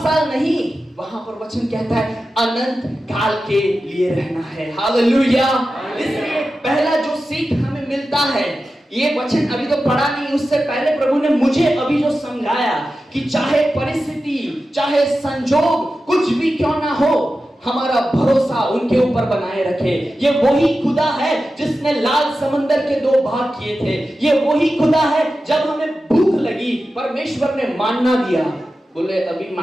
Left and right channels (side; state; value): both; normal; correlation 0.93